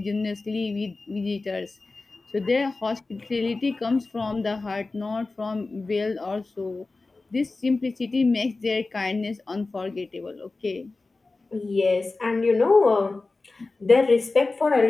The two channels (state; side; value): quieter; right; 3.5 dB